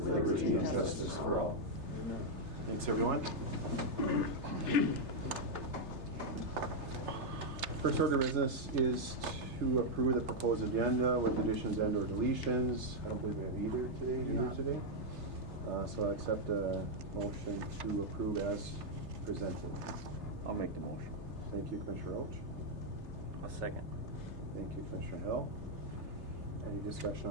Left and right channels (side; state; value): left; late; 3.3 ms